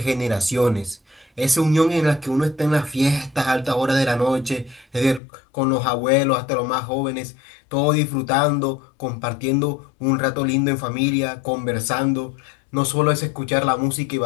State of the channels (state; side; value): drops out; right; at 5.2 s